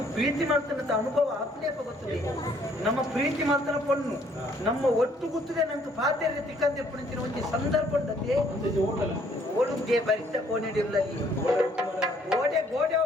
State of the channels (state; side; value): normal; both; correlation 0.64